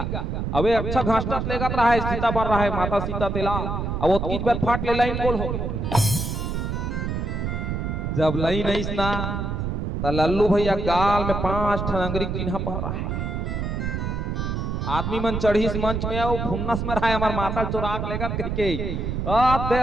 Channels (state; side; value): noise; right; rumble, 2 dB below the sound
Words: अबे अच्छा घसटत लेगा रहा है, सीता बन रहा है माता सीता तेला। अब वो तीन बार फाट ले लाइन गोल हो जब लाइन नहीं ना तो लल्लू भैया गाल में 5 ठन अंगरी चिन्ह पड़ रहा है। आदमी मन चढ़ी इस मंच में आओ फुन्नस में रहा है हमार माता चुराग लेगा कह के